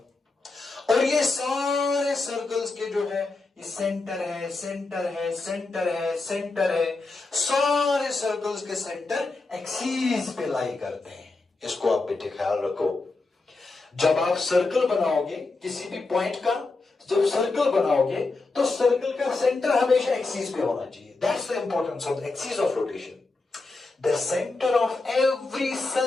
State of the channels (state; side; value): quieter; right; 3.5 dB